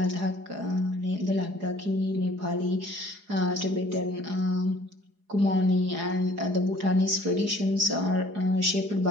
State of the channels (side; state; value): left; late; 4.8 ms